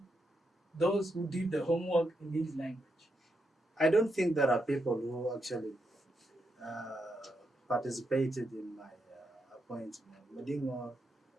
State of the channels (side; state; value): both; normal; correlation 0.82